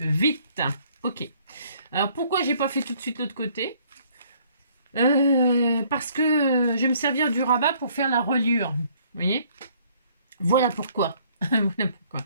Ok. Alors, pourquoi j'ai pas fait tout de suite l'autre côté? Parce que je vais me servir du rabat pour faire la reliure. Vous voyez? Voilà pourquoi. Voilà pourquoi.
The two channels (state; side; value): inverted; both; correlation -0.62